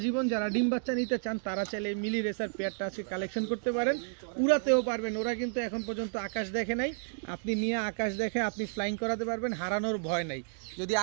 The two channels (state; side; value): silent; left; digital silence